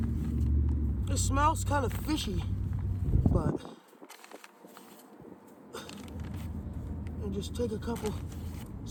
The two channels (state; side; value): identical; both; correlation 1.00